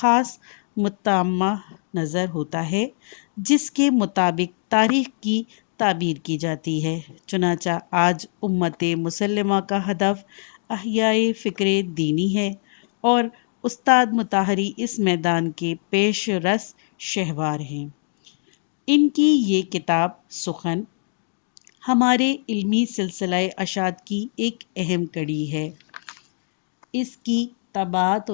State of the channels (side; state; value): right; silent; digital silence